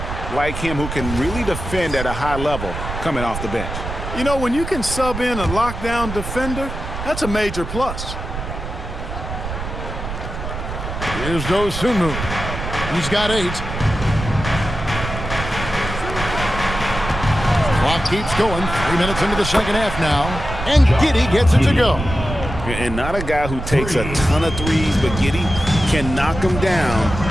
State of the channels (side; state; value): right; noise; rumble, 7 dB below the sound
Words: like him who can really defend at a high level coming off the bench. You know, when you can sub in a lockdown defender, that's a major plus. Here's Dosunmu. He's got 8. Clock keeps going. 3 minutes into the second half now. And Giddey gets it to go. And not a guy who takes a ton of threes, but Giddey can knock him